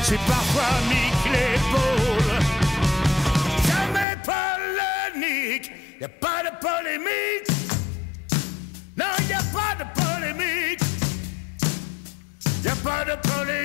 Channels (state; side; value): drops out; right; at 4.0 s